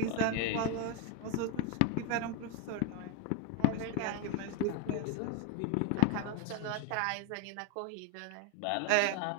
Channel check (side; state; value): both; different; correlation 0.01